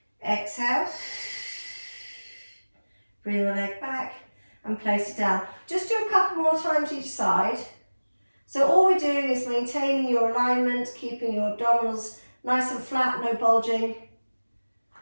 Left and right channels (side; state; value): both; inverted; correlation -1.00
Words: Exhale, bring the leg back and place it down. Just do a couple more times each side. So all we're doing is maintaining your alignment, keeping your abdominals nice and flat, no bulging.